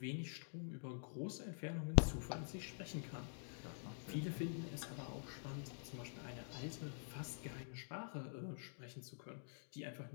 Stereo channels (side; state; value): right; silent; digital silence